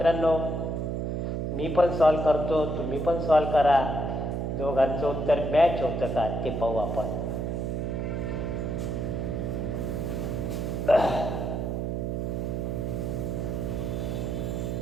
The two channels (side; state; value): right; noise; hum, 1 dB below the sound